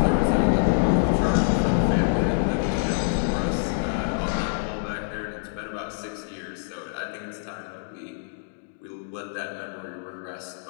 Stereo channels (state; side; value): silent; right; digital silence